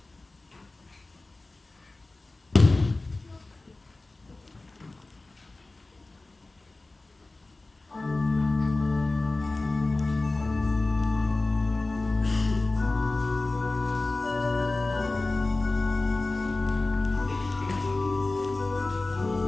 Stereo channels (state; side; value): quieter; right; 3.1 dB